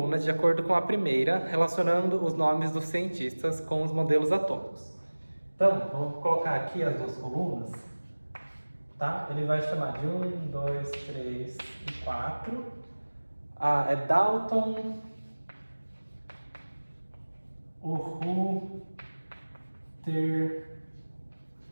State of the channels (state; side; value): inverted; both; correlation -1.00